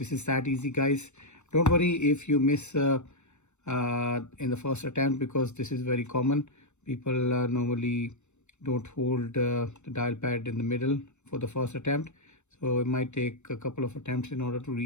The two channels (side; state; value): right; late; 0.83 ms